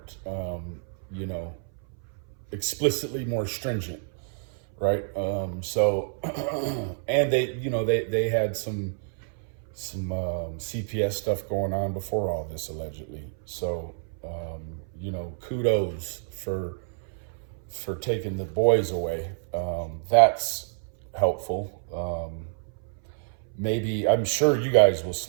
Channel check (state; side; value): silent; left; 58 dB below the other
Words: explicitly more stringent, right? So, and they had some CPS stuff going on before all this, allegedly. So, kudos for taking the boys away. That's helpful. Maybe, I'm sure you guys will